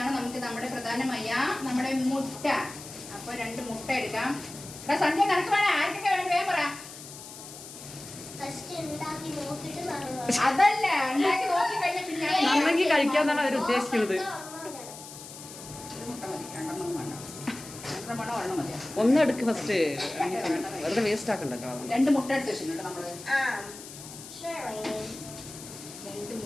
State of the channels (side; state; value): left; noise; hiss, 14 dB below the sound